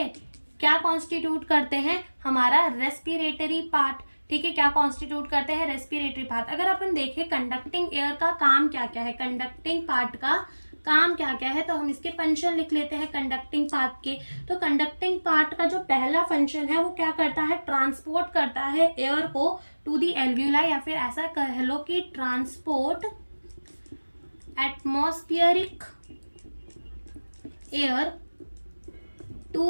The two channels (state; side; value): inverted; both; correlation -1.00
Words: क्या कॉन्स्टिट्यूट करते हैं, हमारा रेस्पिरेटरी पार्ट, ठीक है, क्या कॉन्स्टिट्यूट करते हैं, रेस्पिरेटरी पार्ट। अगर अपन देखें कंडक्टिंग एयर का काम क्या क्या है, कंडक्टिंग पार्ट का काम क्या क्या है, तो हम इसके फंक्शन लिख लेते हैं कंडक्टिंग पार्ट के। तो कंडक्टिंग पार्ट का जो पहला फंक्शन है वो क्या करता है, ट्रांसपोर्ट करता है एयर को टू दी एल्वियोलाई, या फिर ऐसा कह लो कि transport atmospheric air